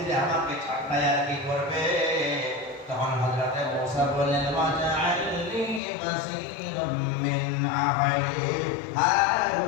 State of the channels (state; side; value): drops out; right; at 5.8 s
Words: আমাকে ঠাট্টায় আর কি করবে। তখন হযরত মুসা বললেন, ওয়াজআলনি বাসীরাম মিন আহলি